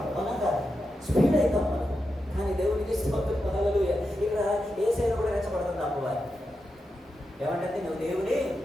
మనం కాదు, స్పీడ్ అవుతాం మనం. కానీ దేవునికి హల్లెలూయా. ఇక్కడ ఏ సైడ్ కూడా రెచ్చబడుతుంది అమ్మవారి. ఏమంటే నువ్వు దేవుని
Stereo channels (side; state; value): both; normal; correlation 0.88